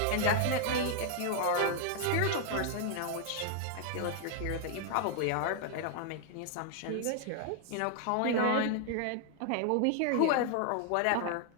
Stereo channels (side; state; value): both; different; correlation 0.00